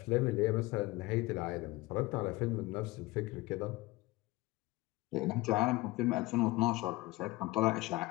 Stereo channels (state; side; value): quieter; right; 20.7 dB